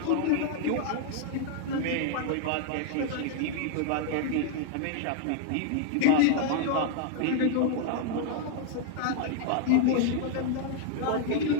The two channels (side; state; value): both; different; correlation -0.01